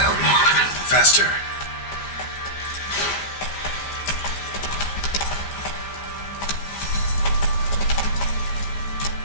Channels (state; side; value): late; right; 15 ms